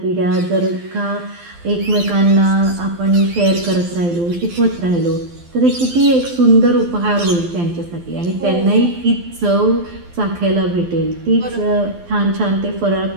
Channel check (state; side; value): late; left; 12 ms